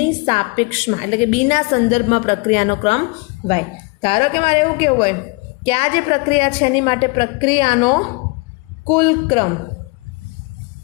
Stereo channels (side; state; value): right; quieter; 28.2 dB